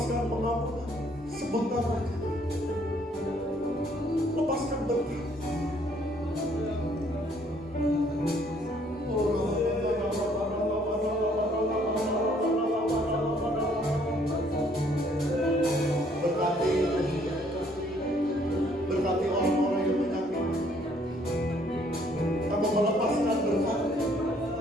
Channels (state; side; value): normal; both; correlation 0.64